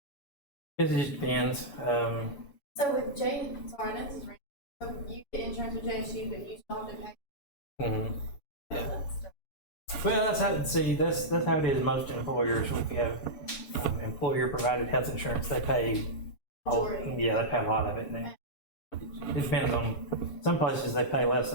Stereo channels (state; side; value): late; right; 7.1 ms